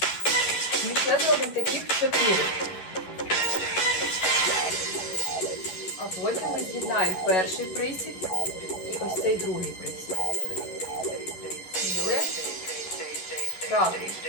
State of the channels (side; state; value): right; late; 11 ms